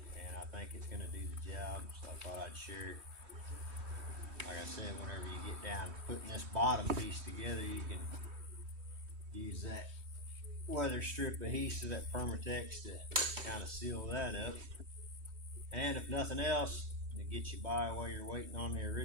and I think it's going to do the job, so I thought I'd share it. Like I said, whenever you get down to putting this bottom piece together, you can use that weather strip adhesive, that Permatex, to kind of seal that up. And if nothing else, to get you by while you're waiting on the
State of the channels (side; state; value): left; late; 3.2 ms